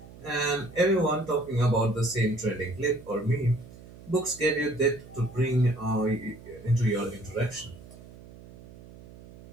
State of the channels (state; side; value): noise; right; hum, 19 dB below the sound